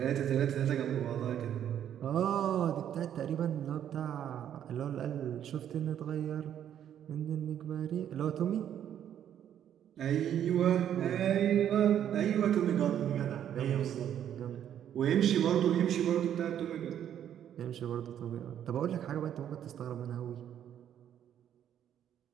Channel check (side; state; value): left; quieter; 10.0 dB